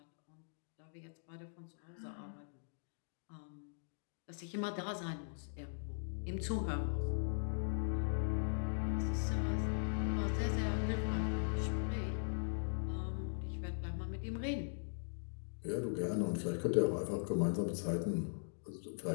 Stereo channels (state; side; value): silent; right; digital silence